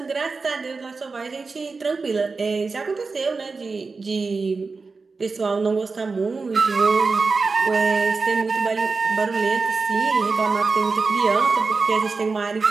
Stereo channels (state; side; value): quieter; left; 4.3 dB